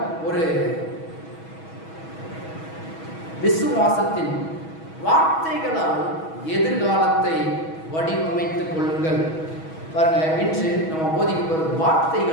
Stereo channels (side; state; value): right; late; 6.2 ms